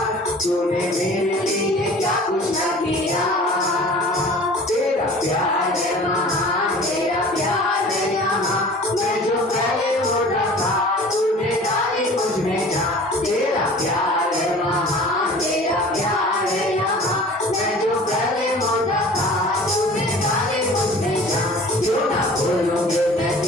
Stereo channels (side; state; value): both; normal; correlation 0.44